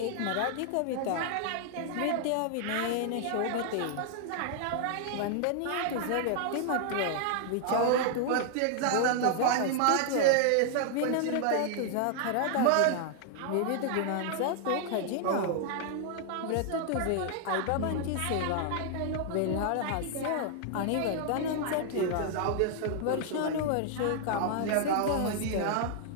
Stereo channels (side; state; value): both; different; correlation 0.00